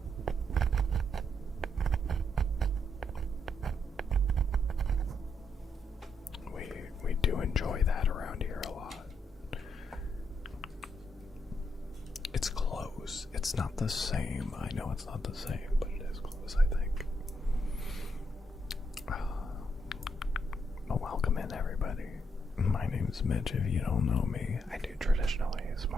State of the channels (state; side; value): normal; both; correlation 0.77